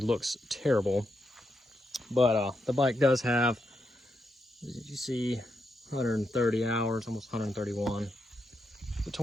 looks terrible. But the bike does have, as you see, 130 hours, almost 131. The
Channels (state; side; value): normal; both; correlation 0.83